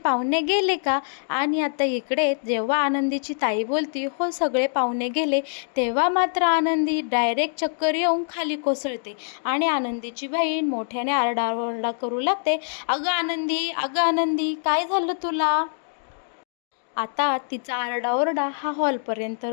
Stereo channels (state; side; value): silent; right; digital silence